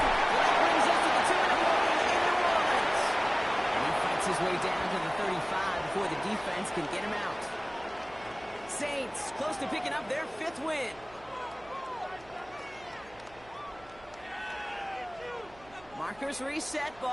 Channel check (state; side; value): noise; right; hum, 25 dB below the sound